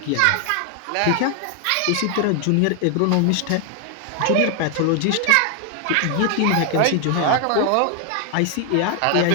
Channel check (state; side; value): different; both; correlation 0.01